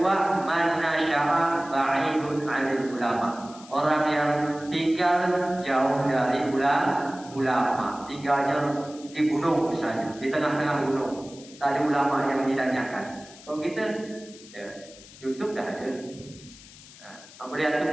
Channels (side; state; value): left; noise; hiss, 20 dB below the sound